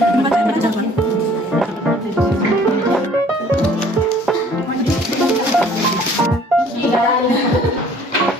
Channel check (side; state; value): both; normal; correlation 0.55